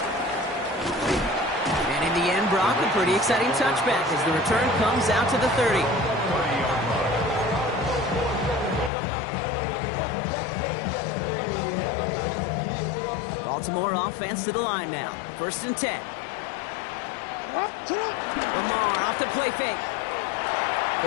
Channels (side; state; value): right; drops out; at 8.9 s